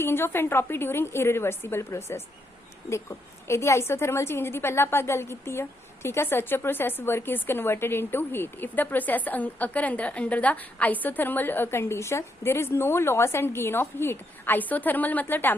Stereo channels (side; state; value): both; normal; correlation 0.78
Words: of entropy during irreversible process. देखो इहदी आइसोथर्मल चेंज दी पहला आपां गल कीती है, ठीक है। Such a process work is converted into heat if the process occur under the isothermal condition there is no loss and gain of heat। isothermal मतलब